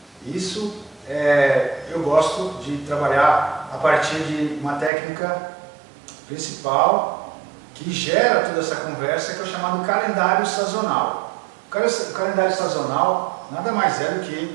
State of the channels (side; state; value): left; drops out; at 4.9 s